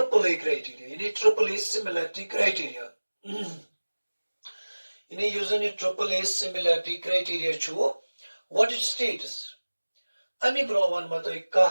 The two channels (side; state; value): both; inverted; correlation -1.00